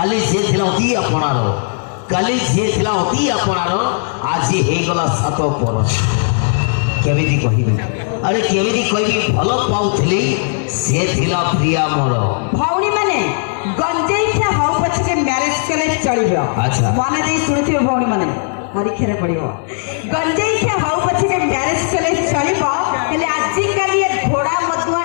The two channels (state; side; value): silent; right; digital silence